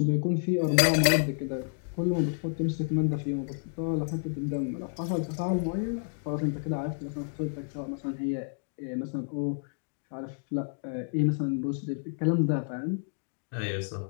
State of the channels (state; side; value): silent; right; digital silence